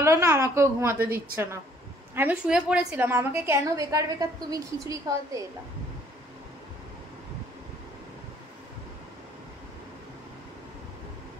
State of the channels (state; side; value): normal; both; correlation 0.61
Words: ভালো না, আমাকেও ঘুমাতে দিচ্ছে না। আমি শুয়ে পড়েছিলাম, আমাকে কেন বেকার বেকার তুমি খিচুড়ি খাওয়াতে এলা?